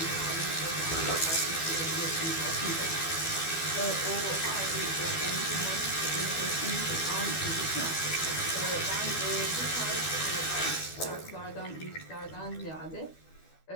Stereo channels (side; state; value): right; late; 12 ms